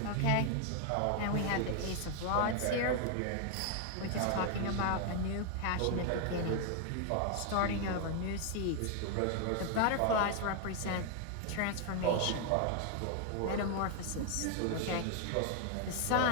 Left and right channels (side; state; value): both; different; correlation 0.00